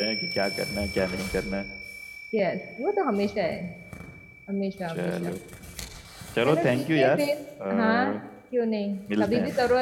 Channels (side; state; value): both; identical; correlation 1.00